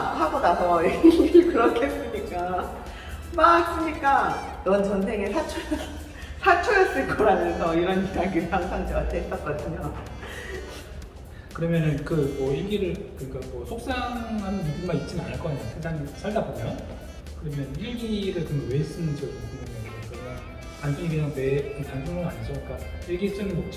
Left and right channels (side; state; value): both; identical; correlation 1.00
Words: 하고 나서 일기를 그렇게 쓰니까 막 쓰니까 넌 전생에 사초였을 거라면서 이런 이야기를 항상 저한테 했었거든요. 그러면은 그 뭐 일기를 그러니까 뭐 속상한 일만 있지는 않을 거 아니에요. 세상에 살다 보면. 그러면 일기를 그럼 왜 쓰는지가 좀 궁금해요. 그러면 단순히 그냥 단순은 아니죠. 그러니까 일기 쓰는